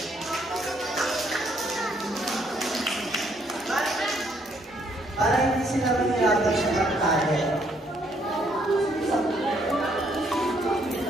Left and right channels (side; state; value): both; normal; correlation 0.69